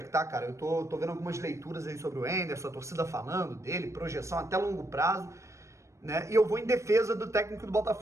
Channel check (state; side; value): late; left; 0.14 ms